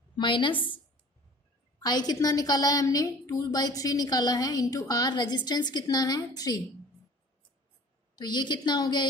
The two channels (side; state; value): both; normal; correlation 0.46